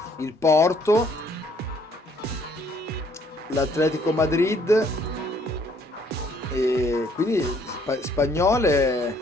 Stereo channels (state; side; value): normal; both; correlation 0.64